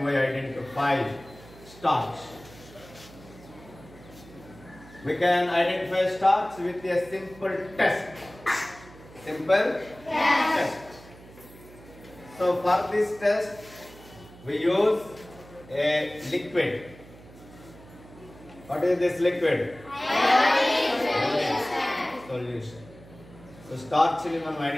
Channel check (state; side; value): noise; right; hum, 21 dB below the sound